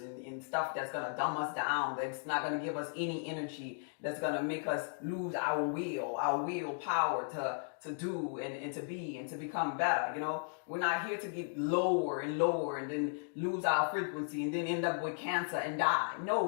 and stuff that's going to dumb us down, that's not going to give us any energy, that's going to make us lose our willpower to do and to be and to become better. You know, we're not here to get lower and lower and then lose our frequency and then end up with cancer and die. No,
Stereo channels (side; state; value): right; silent; digital silence